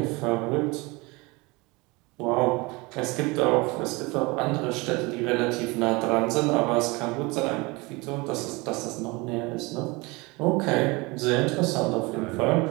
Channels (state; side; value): quieter; left; 25.1 dB